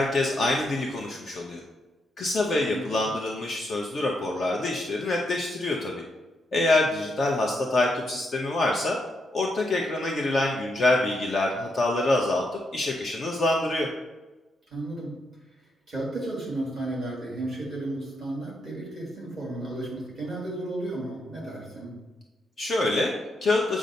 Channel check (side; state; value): both; normal; correlation 0.80